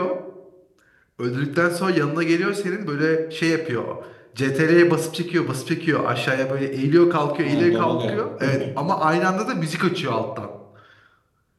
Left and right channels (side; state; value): both; identical; correlation 1.00